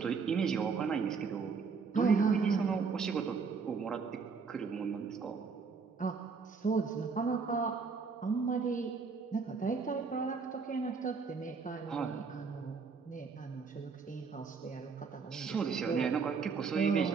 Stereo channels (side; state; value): left; quieter; 5.2 dB